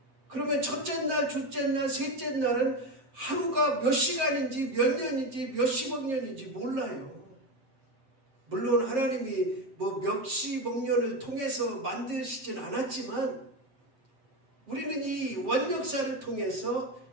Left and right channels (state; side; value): late; left; 7.6 ms